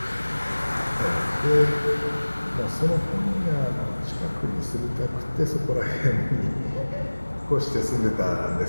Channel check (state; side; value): inverted; both; correlation -1.00